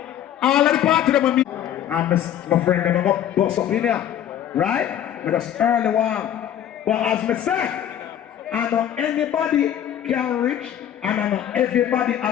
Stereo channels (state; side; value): quieter; right; 10.4 dB